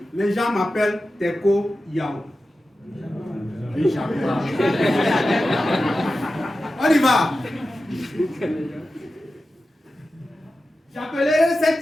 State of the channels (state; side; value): normal; both; correlation 0.93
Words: les gens m'appellent Teko Yao. On y va. J'appellerai